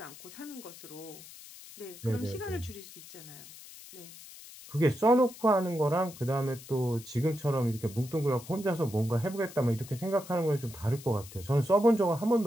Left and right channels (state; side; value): noise; left; hiss, 17 dB below the sound